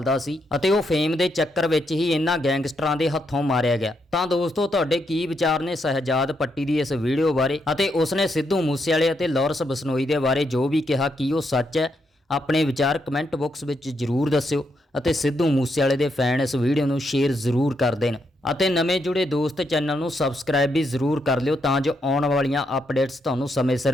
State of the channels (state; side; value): normal; both; correlation 0.79